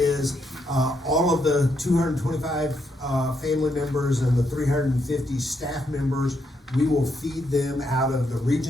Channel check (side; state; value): both; normal; correlation 0.78